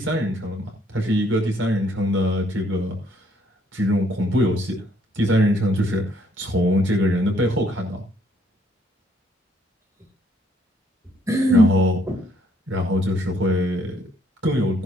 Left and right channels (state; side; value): normal; both; correlation 0.67